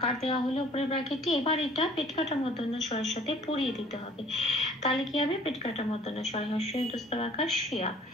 দেওয়া হলো উপরের ব্র্যাকেটে। এবার এটা পেট কাটা মূর্ধন্য ষয়ের সাথে পরিয়ে দিতে হবে, তাহলে কি হবে, পেট কাটা মূর্ধন্য ষয় হর্ষই অন্তস্থ আকার শিয়া।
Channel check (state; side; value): normal; both; correlation 0.54